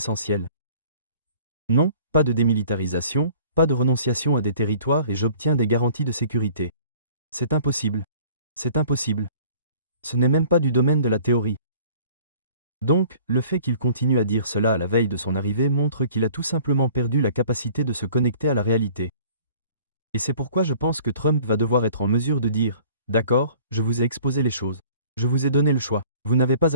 Non, pas de démilitarisation, pas de renonciation à des territoires et j'obtiens des garanties de sécurité. C'est impossible. C'est impossible. Ce n'est même pas du domaine de la théorie. Donc, le fait qu'il continue à dire cela à la veille de son arrivée montre qu'il a tout simplement perdu la capacité de se connecter à la réalité. Et c'est pourquoi je pense que Trump va devoir être en mesure de dire « D'accord, je vous ai exposé les choses. Je vous ai donné le choix. Vous n'avez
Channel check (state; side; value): inverted; both; correlation -0.51